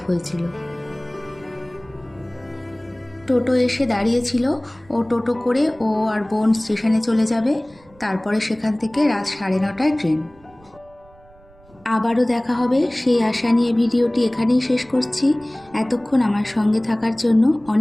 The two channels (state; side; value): noise; right; rumble, 28 dB below the sound